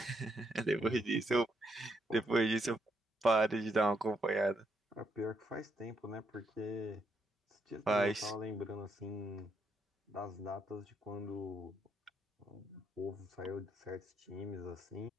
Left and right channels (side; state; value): both; normal; correlation 0.76